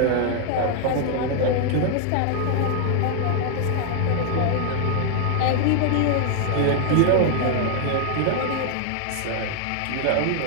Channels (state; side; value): different; both; correlation 0.00